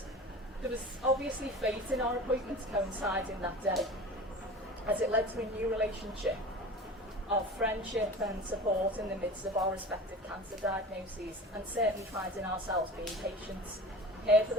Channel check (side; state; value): both; normal; correlation 0.37